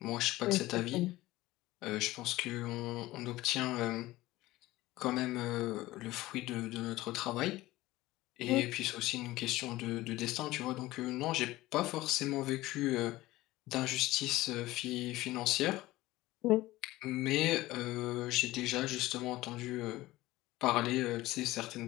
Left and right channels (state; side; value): quieter; right; 17.8 dB